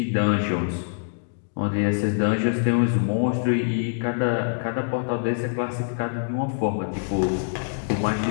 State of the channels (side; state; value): right; silent; digital silence